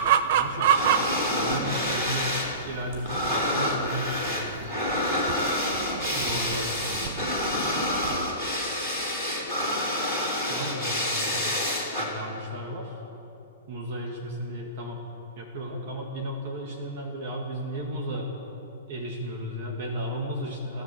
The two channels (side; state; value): both; inverted; correlation -0.30